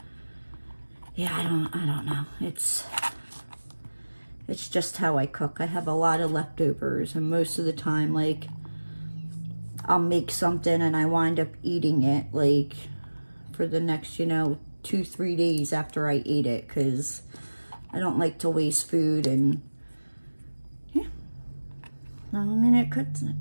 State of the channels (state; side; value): inverted; both; correlation -1.00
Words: Yeah, I don't know. It's just how I cook. I have a lot of leftovers, and most of the time, like, I'll make something and I wind up eating it like for the next, you know, 2-3 days after I ate it, because I don't like to waste food. And I mean, it